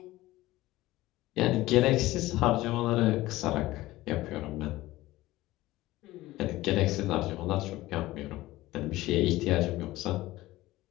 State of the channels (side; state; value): right; quieter; 17.5 dB